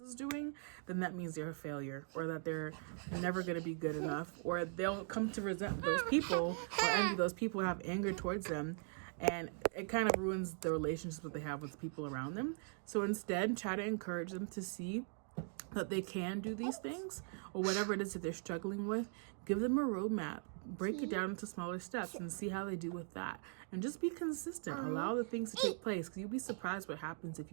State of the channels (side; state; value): left; silent; 51 dB below the other